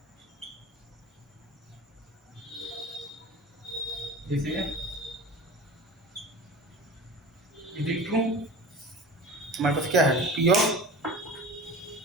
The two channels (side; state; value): both; normal; correlation 0.36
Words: ये सही है। Is it true? हमारे पास क्या है? P of.